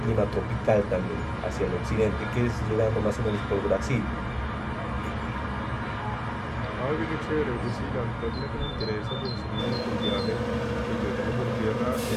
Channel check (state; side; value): identical; both; correlation 1.00